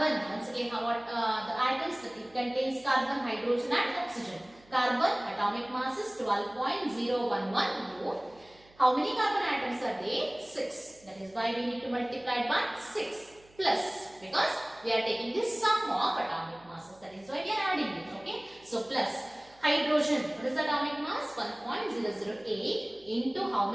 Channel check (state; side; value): noise; right; hum, 28 dB below the sound